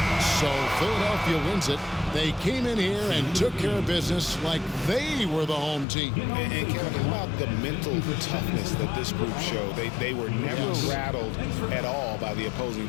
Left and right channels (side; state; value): right; drops out; at 5.9 s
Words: So Philadelphia wins it. They came in here and took care of business like they were the home team. And Kevin, how about the mental toughness that this group showed? They were never rattled at all by the opposing